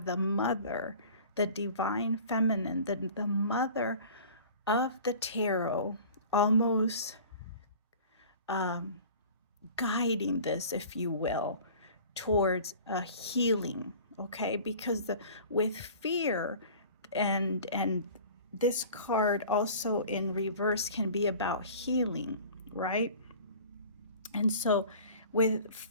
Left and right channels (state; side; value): inverted; both; correlation -0.43